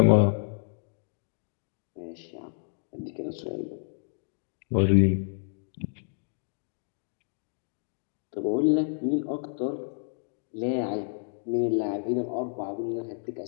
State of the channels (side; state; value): right; silent; digital silence